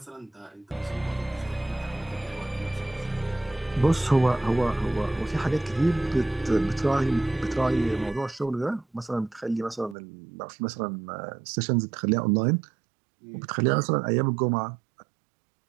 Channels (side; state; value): left; drops out; at 10.0 s